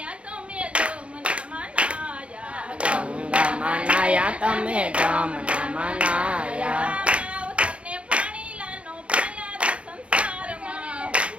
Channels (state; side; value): late; left; 0.060 ms